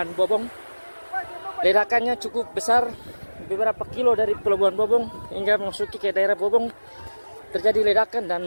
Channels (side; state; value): both; inverted; correlation -1.00